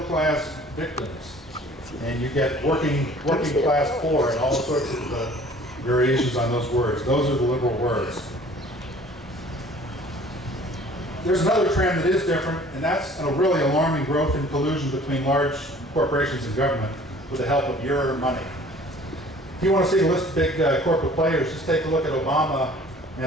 class, victims. And you get working class poor and all sorts of variations on those words. Those are the liberal words. There's another trend that is different, and that's a really alarming growth in collusion between large corporations and government with the help of your money. If you want to see a list of big corporate players, just take a look at Obama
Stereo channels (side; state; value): both; normal; correlation 0.51